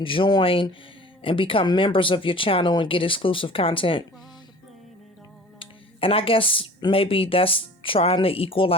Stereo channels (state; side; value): normal; both; correlation 0.44